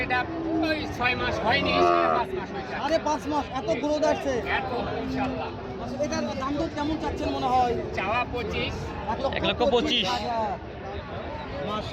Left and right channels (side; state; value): both; identical; correlation 1.00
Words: এটা ওই 6 মাস হয়নি, 5 মাস হয়েছে। 5.5 মাস। এত গ্রোথ আসছে। এত ইনশাআল্লাহ। এটার দাম দর কেমন চাচ্ছেন মনে হয়? চাওয়া 25। 1,25,000।